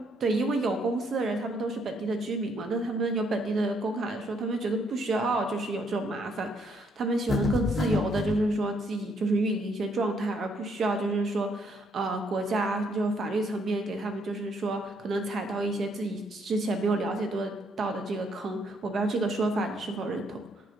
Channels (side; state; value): both; normal; correlation 0.70